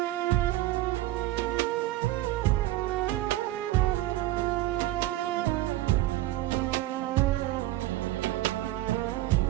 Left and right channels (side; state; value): left; quieter; 15.6 dB